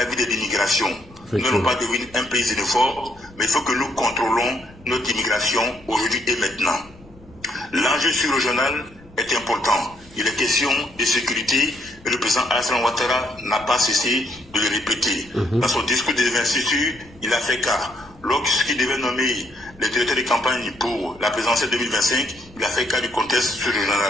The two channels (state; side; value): noise; left; rumble, 25 dB below the sound